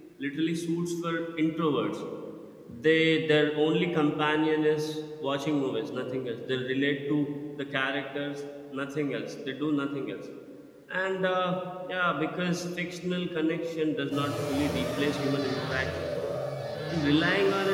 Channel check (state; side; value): identical; both; correlation 1.00